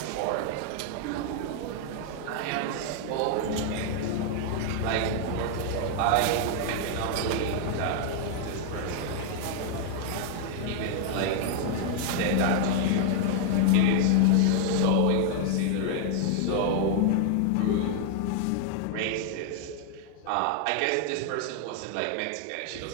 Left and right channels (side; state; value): both; different; correlation 0.00